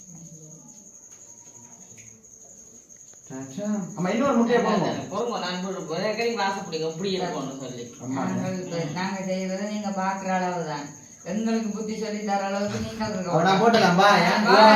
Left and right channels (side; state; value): both; identical; correlation 1.00